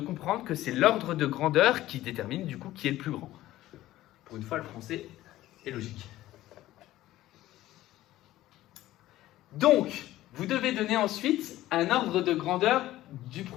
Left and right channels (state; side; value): quieter; right; 15.2 dB